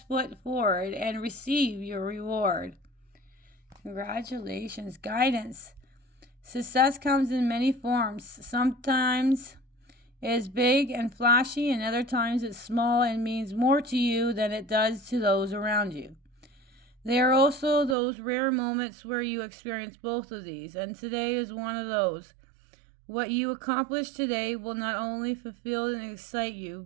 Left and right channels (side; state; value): left; drops out; at 17.9 s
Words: foot forward and receive your reward. Congratulations. Guidance. Success comes in many forms. Sometimes it is big and flashy, and other times it's small and means more to you than it does to those around you. There are also those rare moments where you experience both of these, and today is one of those. What you accomplish today will not only fulfill and excite you,